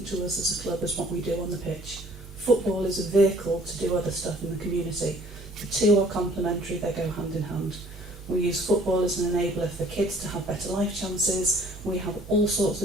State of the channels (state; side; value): normal; both; correlation 0.56